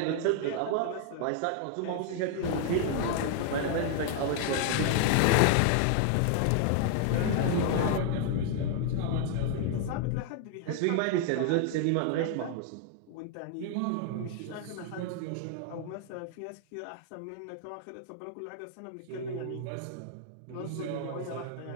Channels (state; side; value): different; both; correlation 0.00